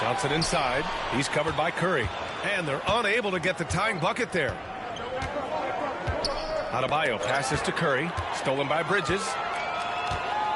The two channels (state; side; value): identical; both; correlation 1.00